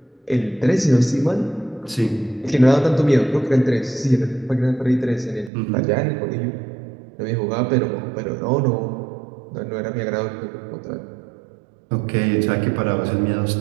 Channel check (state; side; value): drops out; left; at 5.5 s